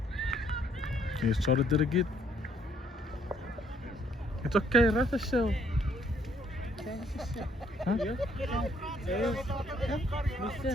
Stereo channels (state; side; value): normal; both; correlation 0.66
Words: You started it again. It's okay, right the show. Huh?